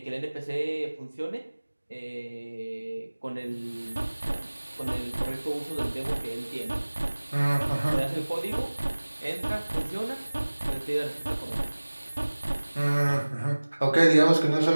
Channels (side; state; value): both; inverted; correlation -1.00